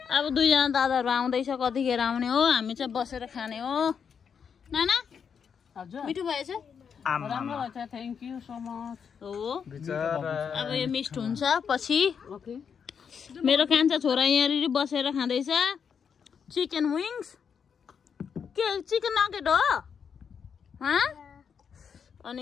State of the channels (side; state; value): right; quieter; 6.9 dB